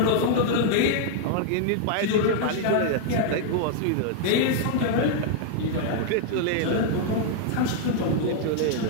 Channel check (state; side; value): different; both; correlation 0.00